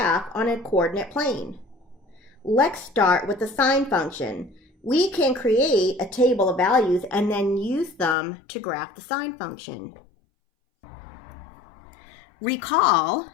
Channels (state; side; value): drops out; right; at 8.2 s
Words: on a coordinate plane? Let's start with the sine function. We can create a table of values and then use them to graph the sine function. Recall